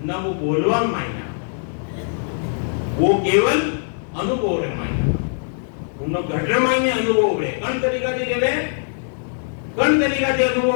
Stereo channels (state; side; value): silent; right; digital silence